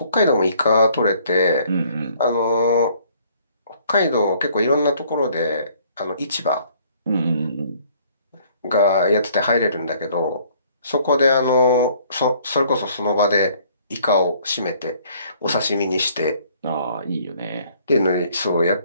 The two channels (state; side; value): inverted; both; correlation -0.60